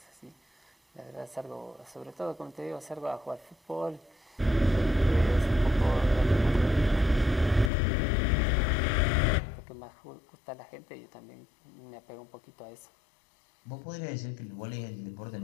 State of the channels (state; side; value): drops out; right; at 7.7 s